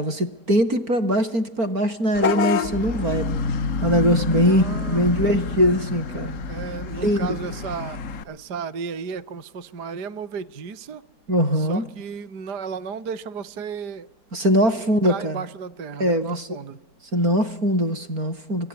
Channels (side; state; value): left; late; 4.4 ms